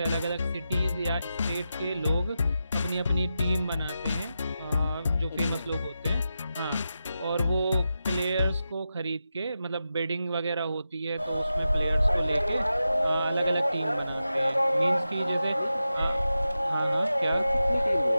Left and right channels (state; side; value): inverted; both; correlation -0.90